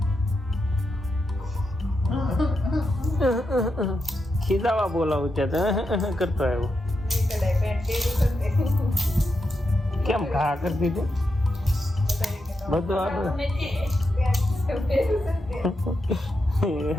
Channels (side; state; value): both; normal; correlation 0.86